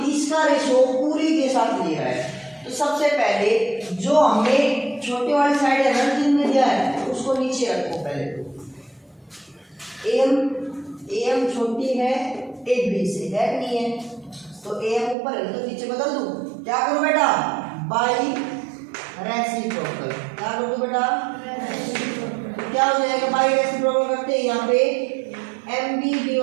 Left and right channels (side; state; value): left; drops out; at 15.2 s